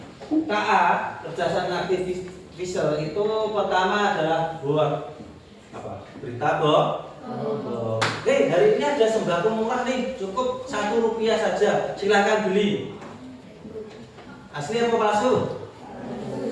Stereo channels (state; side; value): identical; both; correlation 1.00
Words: KA, kecerdasan artificial itu pertama adalah berita bohong. Oke, hari ini ada sembako murah nih, cukup Rp1 saja, silahkan beli. Asli apa palsu?